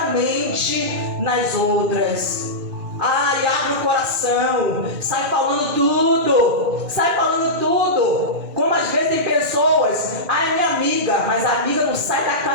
nas outras. Ai, abre o coração, sai falando tudo. Como às vezes tem pessoas, ai, minha amiga, mas a amiga não sai da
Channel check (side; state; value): left; late; 1.3 ms